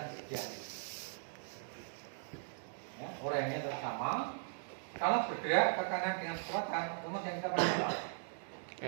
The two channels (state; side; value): silent; left; digital silence